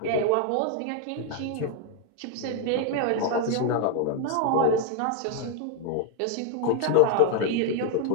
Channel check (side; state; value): both; different; correlation 0.00